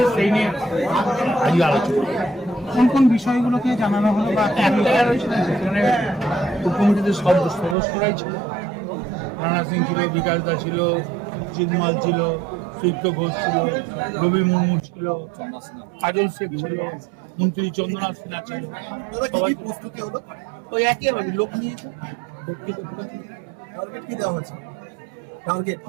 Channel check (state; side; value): drops out; left; at 7.8 s